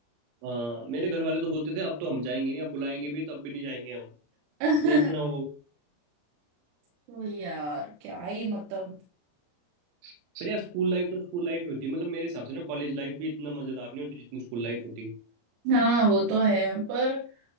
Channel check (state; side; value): late; left; 34 ms